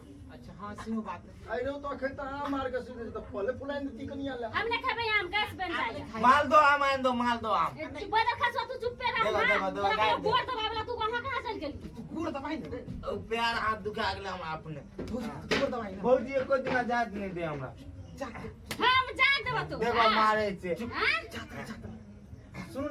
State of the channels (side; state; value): both; identical; correlation 1.00